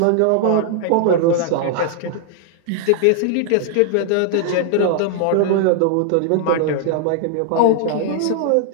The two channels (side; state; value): both; different; correlation 0.00